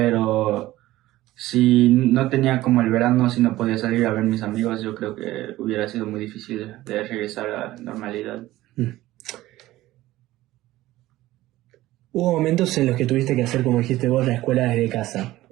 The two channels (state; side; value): quieter; left; 16.4 dB